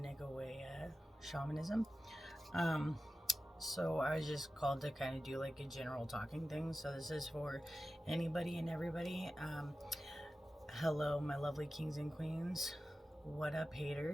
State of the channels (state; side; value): normal; both; correlation 0.94